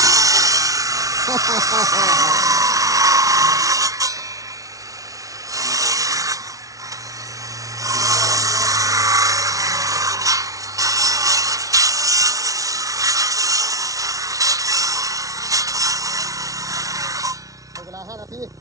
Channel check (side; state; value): left; late; 0.17 ms